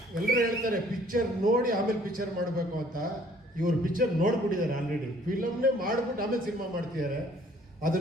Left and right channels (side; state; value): both; normal; correlation 0.58